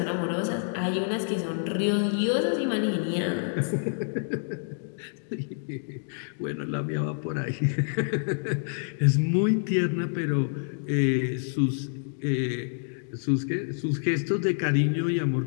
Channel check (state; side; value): silent; right; digital silence